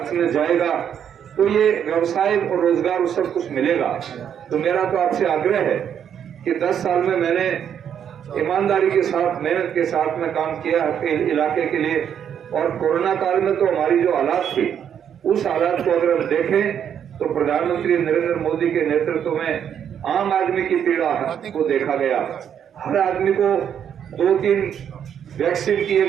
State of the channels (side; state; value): left; quieter; 8.7 dB